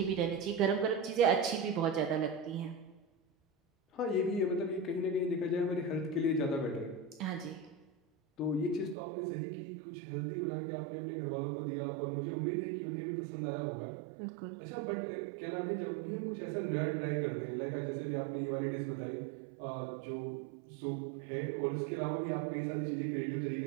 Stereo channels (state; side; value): drops out; left; at 9.0 s